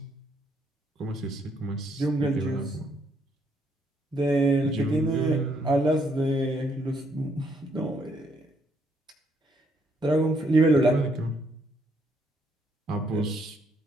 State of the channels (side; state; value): both; normal; correlation 0.71